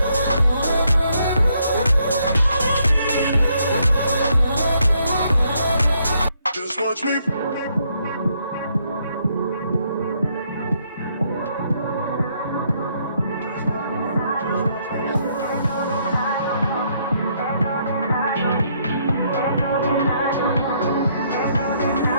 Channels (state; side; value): inverted; both; correlation -0.72